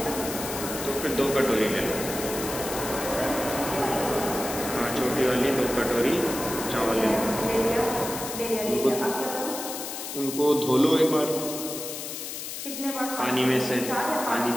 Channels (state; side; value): noise; left; hiss, 7 dB below the sound